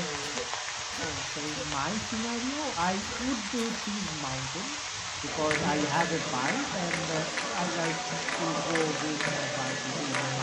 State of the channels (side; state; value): both; identical; correlation 1.00